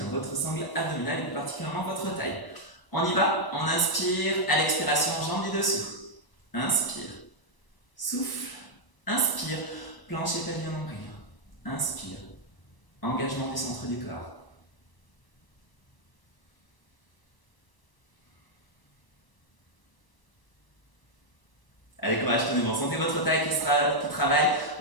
votre sangle abdominale et plus particulièrement votre taille. On y va, on inspire, à l'expiration, jambe du dessous. Inspire, souffle, inspire, plancher pelvien nombril. Inspire, engagement du centre du corps. Allez, courage, tenez bon. Sentez votre taille qui travaille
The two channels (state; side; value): late; right; 1.0 ms